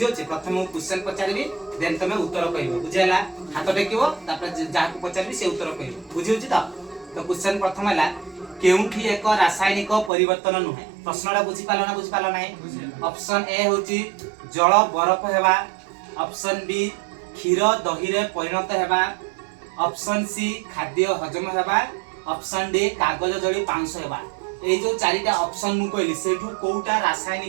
छी। प्रथम मु क्वेश्चन पचारिबी देन तमे उत्तर कहिबो बुझियला हाथ टेकिबो तापर जाको पचारिबी से उत्तर कहिबो बुझियो छी। तो क्वेश्चन प्रथम हला केउठी एक रासायनिक परिवर्तन नुहे प्रश्नटा बुझी पालो नाही। ऑप्शन ए होची जल बरफ हेबा, ऑप्शन बी क्षीर दही रे परिणत हेबा, ऑप्शन सी खाद्य हजम हेबा, ऑप्शन डी कागज जड़ी पांच हेबा। ए जो चारिटा ऑप्शन मु कहली सेठू कोउटा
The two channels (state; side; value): drops out; left; at 10.1 s